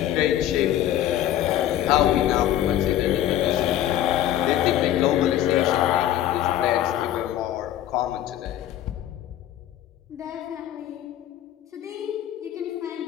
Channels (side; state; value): right; quieter; 12.2 dB